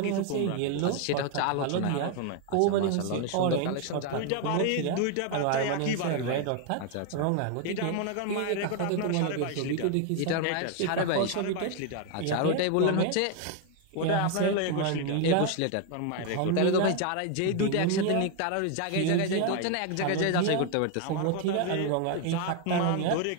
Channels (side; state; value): both; different; correlation 0.01